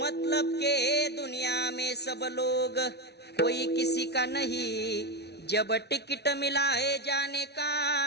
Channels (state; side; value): late; right; 0.49 ms